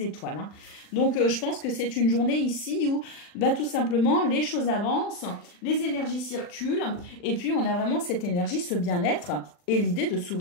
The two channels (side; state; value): right; late; 40 ms